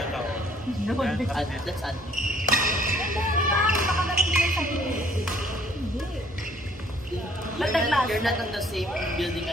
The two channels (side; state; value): both; normal; correlation 0.60